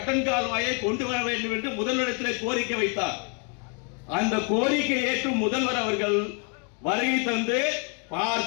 கால்வாயை கொண்டு வர வேண்டும் என்று முதல்வரிடத்தில் கோரிக்கை வைத்தார். அந்த கோரிக்கை ஏற்றும் முதல்வர் அவர்கள் வருகை தந்து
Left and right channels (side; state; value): right; quieter; 38.0 dB